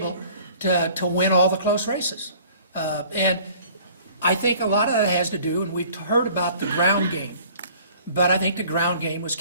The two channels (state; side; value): inverted; both; correlation -0.51